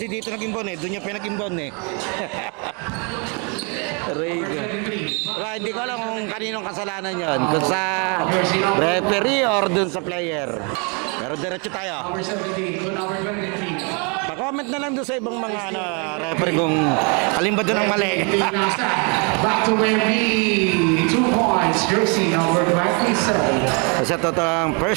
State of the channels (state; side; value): quieter; left; 34.6 dB